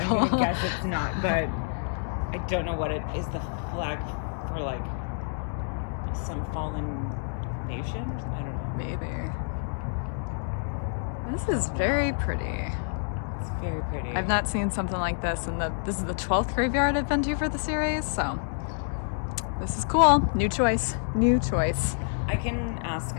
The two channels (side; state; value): right; silent; digital silence